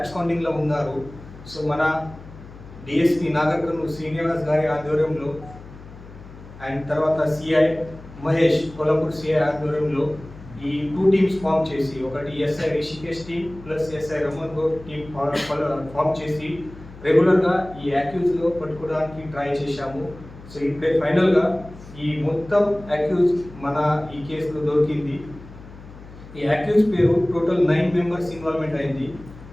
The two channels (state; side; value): noise; left; hum, 18 dB below the sound